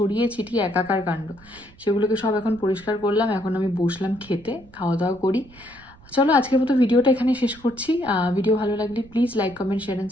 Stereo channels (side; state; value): right; noise; rumble, 24 dB below the sound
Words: ছিটিয়ে একাকার কাণ্ড। সেগুলোকে সব এখন পরিষ্কার করলাম, এখন আমি বসলাম খেতে, খাওয়া দাওয়া করি। চলো আজকের মতো ভিডিওটা এখানে শেষ করছি। ভিডিও ভালো লাগলে please like, comment, share and